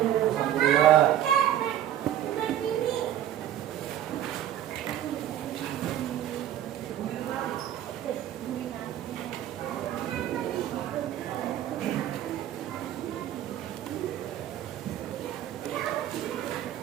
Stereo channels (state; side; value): quieter; left; 11.6 dB